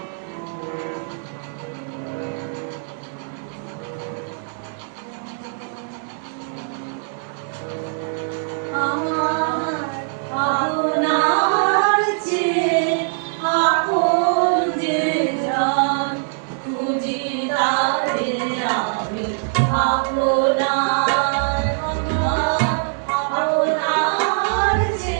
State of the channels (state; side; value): silent; left; 64 dB below the other